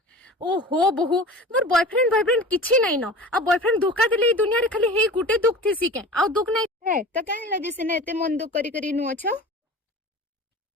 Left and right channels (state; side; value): normal; both; correlation 0.36